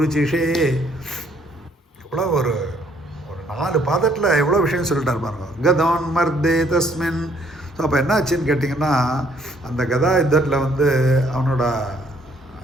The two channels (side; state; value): both; normal; correlation 0.65